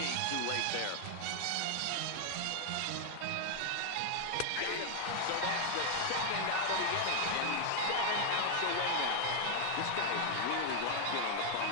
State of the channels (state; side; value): different; both; correlation 0.00